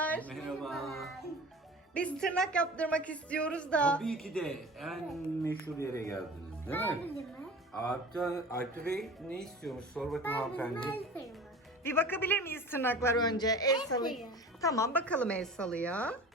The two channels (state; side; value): normal; both; correlation 0.38